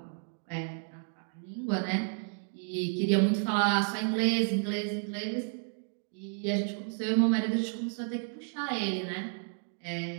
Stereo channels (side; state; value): left; silent; 57 dB below the other